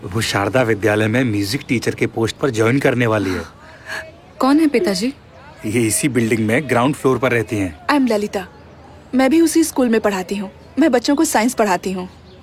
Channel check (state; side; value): identical; both; correlation 1.00